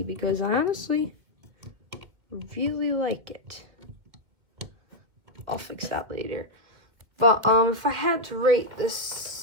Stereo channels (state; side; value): late; left; 2.4 ms